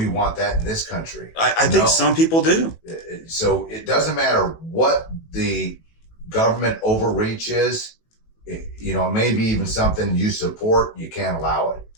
want that in this country? I think some people do. So it doesn't matter what the government overreach is. It may be even something you support, you can't allow it.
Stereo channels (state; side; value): late; right; 18 ms